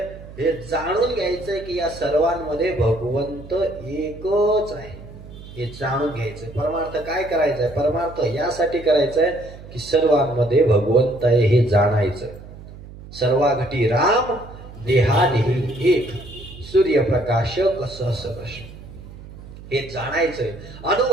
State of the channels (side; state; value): right; noise; hum, 16 dB below the sound